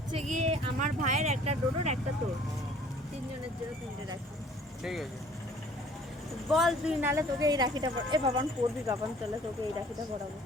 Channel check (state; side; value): normal; both; correlation 0.54